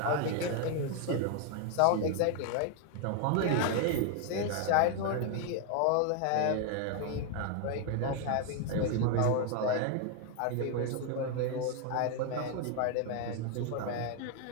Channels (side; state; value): both; different; correlation 0.00